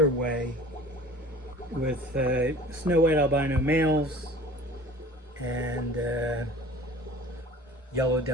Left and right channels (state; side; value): normal; both; correlation 0.43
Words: way, with snow white albino males and yellow